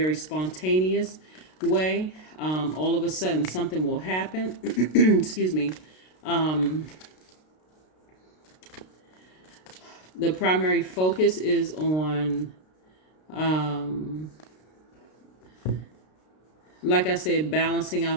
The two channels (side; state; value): right; late; 32 ms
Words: spontaneous way. All of a sudden something will happen. Excuse me. The primary focus is on, like I said, balancing